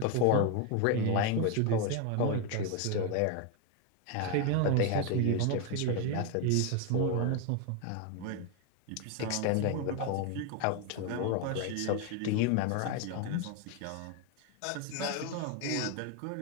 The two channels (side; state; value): both; different; correlation 0.01